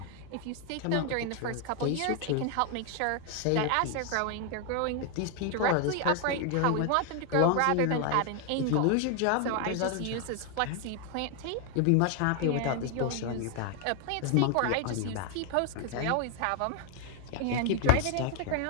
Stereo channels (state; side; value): different; both; correlation 0.01